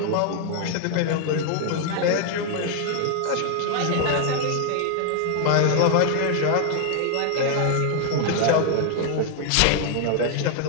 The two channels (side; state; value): both; different; correlation 0.00